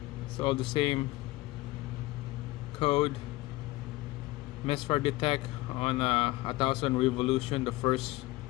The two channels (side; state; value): right; quieter; 19.5 dB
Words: It's all the same code. Misfire detect on 1,000 revolution the first,